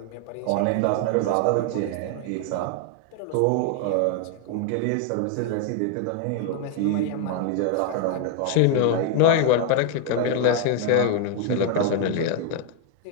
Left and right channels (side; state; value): both; different; correlation 0.01